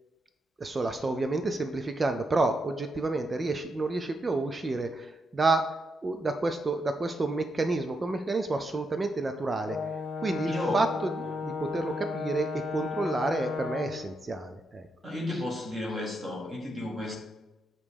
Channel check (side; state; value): both; normal; correlation 0.82